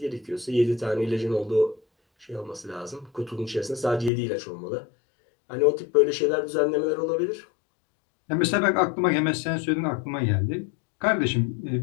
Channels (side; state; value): right; drops out; at 4.1 s